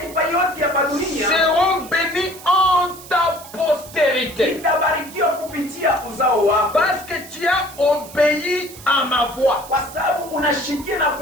yote ya dunia seront bénies en ta postérité. itabarikiwa kupitia uzao wako, Parce que tu as obéi à ma voix. kwa sababu unashikia na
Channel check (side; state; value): right; noise; hiss, 17 dB below the sound